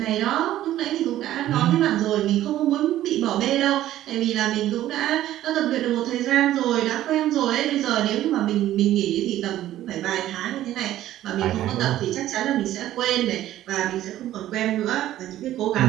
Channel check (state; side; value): quieter; left; 13.4 dB